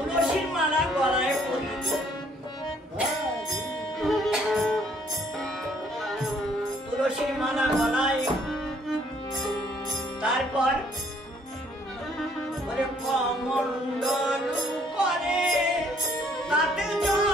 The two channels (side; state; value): both; normal; correlation 0.63